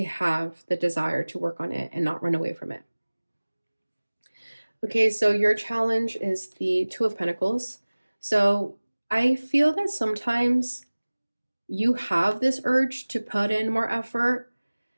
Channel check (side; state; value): both; inverted; correlation -1.00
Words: have the desire to work on it and not run away from it. Okay, so your challenge is the Two of Pentacles. So I feel that sometimes you have this urge to put in more effort.